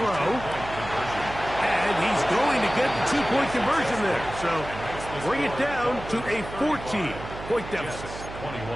And he's going to get the 2-point conversion there. So bring it down to a 14-point deficit.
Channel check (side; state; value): right; noise; hum, 11 dB below the sound